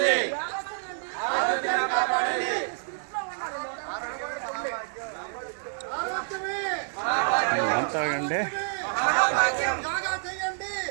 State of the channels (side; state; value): left; silent; 59 dB below the other